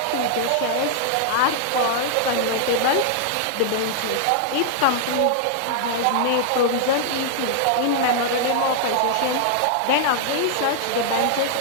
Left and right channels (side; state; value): both; different; correlation -0.01